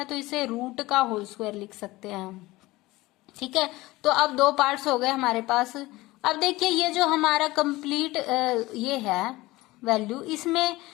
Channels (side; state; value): right; quieter; 19.5 dB